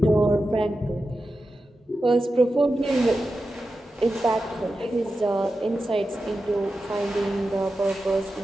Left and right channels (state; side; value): normal; both; correlation 0.92